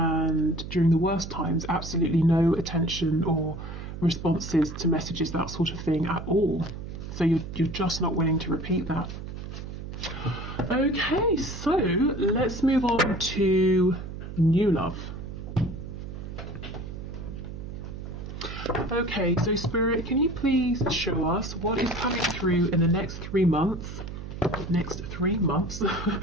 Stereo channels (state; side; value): noise; right; hum, 9 dB below the sound